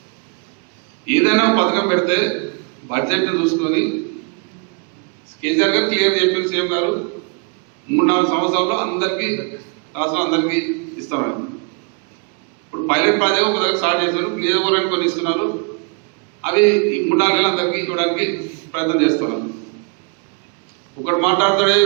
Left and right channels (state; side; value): quieter; left; 37.1 dB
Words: ఏదైనా పథకం పెడితే బడ్జెట్ని చూసుకొని కేసీఆర్ గారు క్లియర్ చెప్పిన సీఎం గారు 3-4 సంవత్సరాల్లో అందరికీ రాష్ట్రం అందరికీ ఇస్తామని. ఇప్పుడు పైలట్ ప్రాజెక్ట్ ఒక దగ్గర స్టార్ట్ చేశారు, నియోజకవర్గానికి కొన్ని ఇస్తున్నారు. అవి ఈ 3-4 నెలలు అందరికీ ఇవ్వడానికి ప్రయత్నం చేస్తున్నారు. ఒకటి మాట్లాడుతాడే